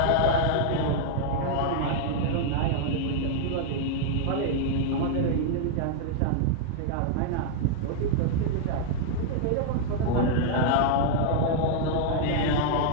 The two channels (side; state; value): both; different; correlation -0.01